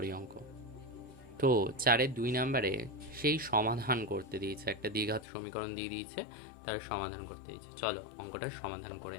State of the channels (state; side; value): drops out; right; at 5.2 s